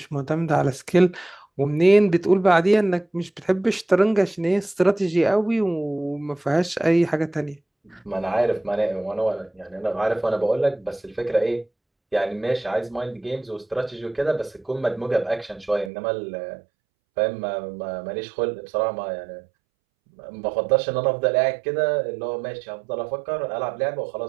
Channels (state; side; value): drops out; left; at 15.9 s